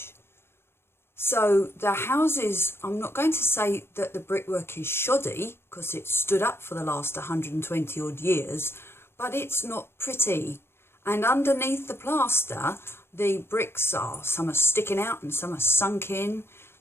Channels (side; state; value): right; late; 0.12 ms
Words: so the houses, I'm not going to say that the brickwork is shoddy because it's stood up for the last 120 odd years, but it's not pretty. And underneath the plaster, the bricks are, some are sticking out and some are sunk in.